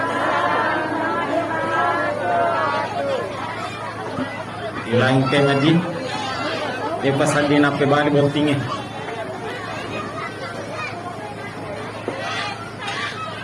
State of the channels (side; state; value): both; identical; correlation 1.00